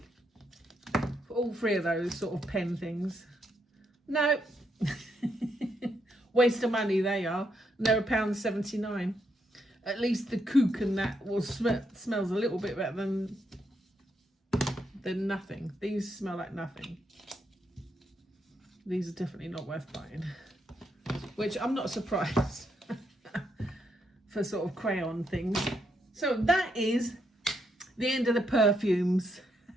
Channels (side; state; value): both; normal; correlation 0.78